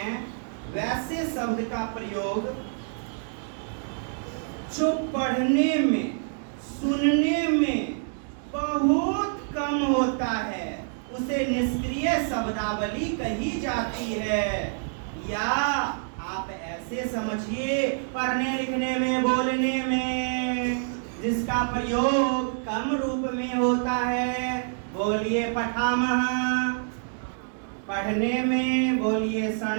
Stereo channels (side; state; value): left; silent; digital silence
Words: वैसे शब्द का प्रयोग जो पढ़ने में सुनने में बहुत कम होता है, उसे निष्क्रिय शब्दावली कही जाती है। या आप ऐसे समझिए, पढ़ने लिखने में बोलने में जिसका प्रयोग कम रूप में होता है, बोलिए पठामः। पढ़ने में बोलिए